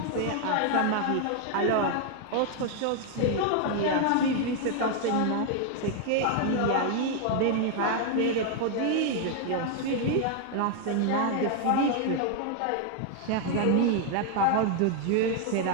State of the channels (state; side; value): different; both; correlation 0.00